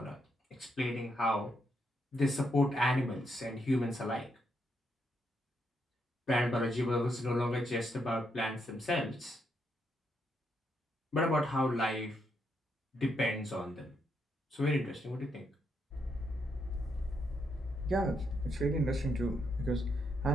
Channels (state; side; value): normal; both; correlation 0.78